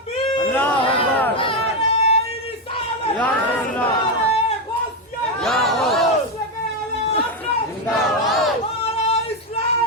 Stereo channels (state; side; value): normal; both; correlation 0.07